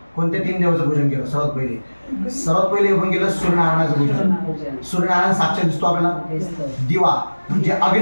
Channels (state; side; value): inverted; both; correlation -1.00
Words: कोणत्या 3 देवाचं पूजन केलं? सर्वात पहिले आपण केलं सूर्यनारायणाचं पूजन. सूर्यनारायण साक्षात दिसतो आपल्याला. दिवा म्हणजे